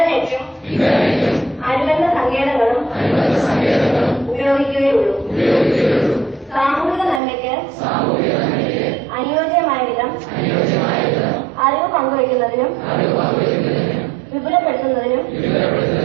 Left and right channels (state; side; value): drops out; left; at 7.2 s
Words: അനുബന്ധ സങ്കേതങ്ങളും ഉപയോഗിക്കുകയുള്ളൂ. സാമൂഹിക നന്മയ്ക്ക് അനുയോജ്യമായ വിധം അറിവ് പങ്കുവയ്ക്കുന്നതിനും വിപുലപ്പെടുത്തുന്നതിനും